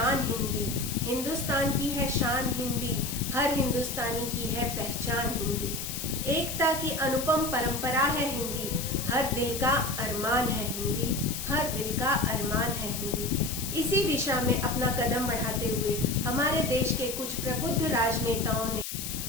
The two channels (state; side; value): noise; left; hiss, 6 dB below the sound